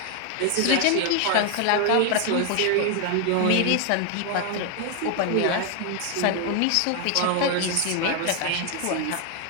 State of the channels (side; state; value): both; different; correlation 0.00